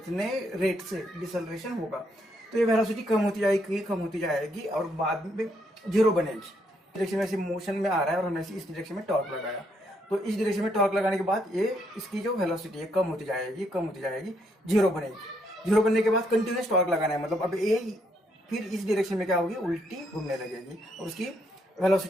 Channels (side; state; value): both; normal; correlation 0.74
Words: रेट से डिसलेरेशन होगा। तो ये वेलोसिटी कम होती जाएगी और बाद में जीरो बनेगी। डायरेक्शन में से मोशन में आ रहा है और हमने इस डायरेक्शन में टॉर्क लगाया, तो इस डायरेक्शन में टॉर्क लगाने के बाद ये इसकी जो वेलोसिटी है कम होती जाएगी, जीरो बनेगी। जीरो बनने के बाद कंटिन्यूस टॉर्क लगाना है, मतलब अब ये फिर इस डायरेक्शन में क्या होगी, उल्टी घूमने लगेगी और उसकी